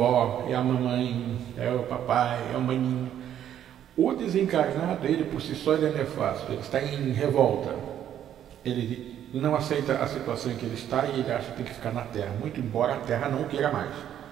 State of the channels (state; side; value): quieter; left; 10.5 dB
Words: é a mamãe, é o papai, é o maninho. O desencarnado, ele por si só, ele é nefasto, ele está em revolta. Ele não aceita a situação em que ele está e ele acha que tem que ficar na Terra, muito embora a Terra não queira mais.